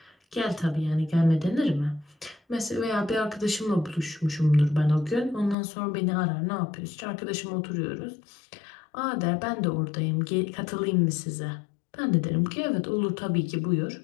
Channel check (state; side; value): drops out; right; at 5.6 s